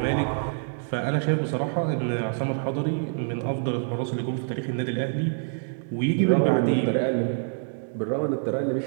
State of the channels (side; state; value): left; silent; digital silence